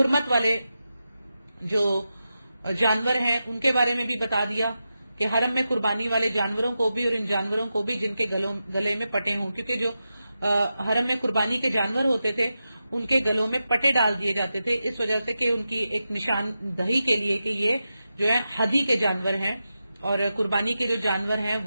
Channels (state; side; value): inverted; both; correlation -0.90